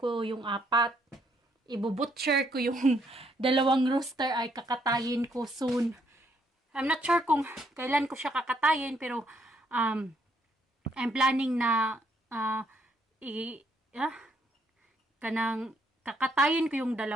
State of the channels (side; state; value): both; normal; correlation 0.72